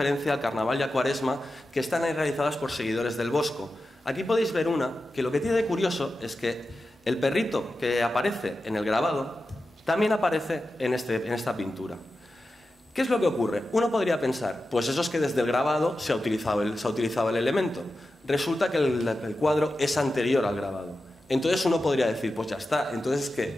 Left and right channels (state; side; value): normal; both; correlation 0.92